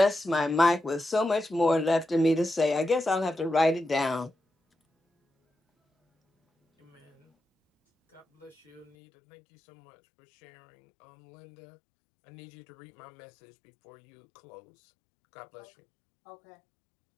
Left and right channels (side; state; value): right; drops out; at 8.9 s